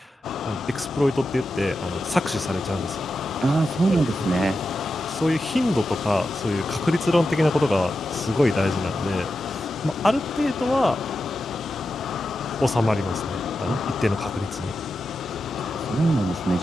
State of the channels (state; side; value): normal; both; correlation 0.90